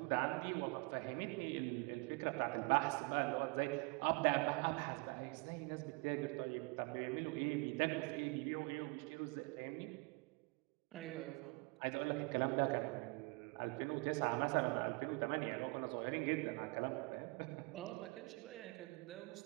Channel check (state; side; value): quieter; left; 28.8 dB